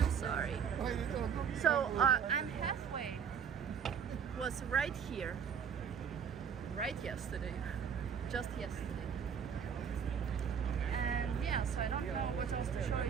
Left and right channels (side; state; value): left; quieter; 7.3 dB